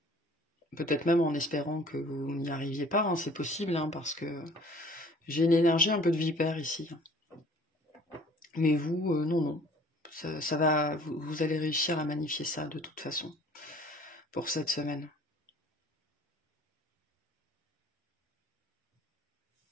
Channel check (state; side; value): normal; both; correlation 0.51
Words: peut-être même en espérant que vous n'y arriviez pas, c'est possible, parce que j'ai une énergie un peu de vipère ici. Mais vous, non. Ça va, vous allez réussir à magnifier ça de toute façon, pour cette semaine.